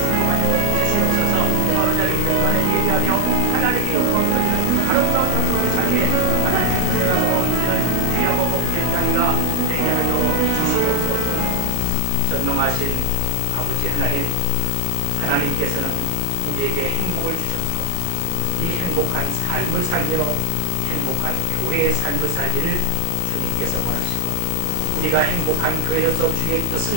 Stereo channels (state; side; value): different; both; correlation 0.00